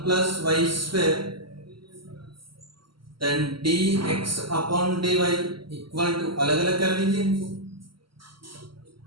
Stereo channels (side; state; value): left; late; 0.74 ms